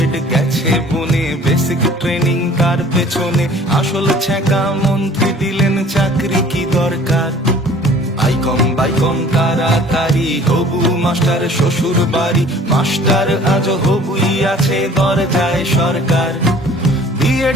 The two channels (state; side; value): normal; both; correlation 0.50